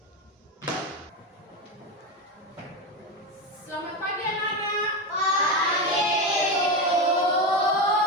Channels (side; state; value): both; normal; correlation 0.16